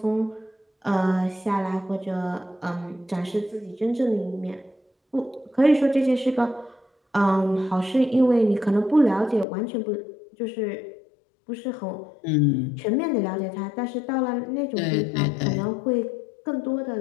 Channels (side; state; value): right; drops out; at 9.5 s